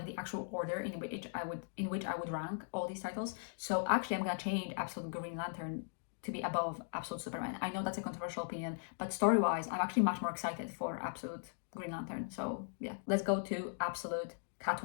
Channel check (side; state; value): right; silent; digital silence